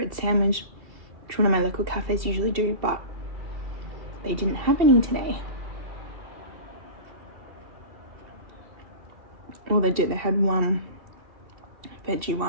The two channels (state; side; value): late; left; 2.7 ms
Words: sandwich, which one of my local cafes usually do, but they didn't have any today. Well, they did. They had one veggie